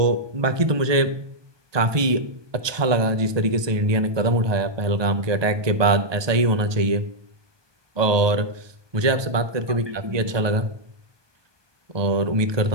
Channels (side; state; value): left; late; 1.2 ms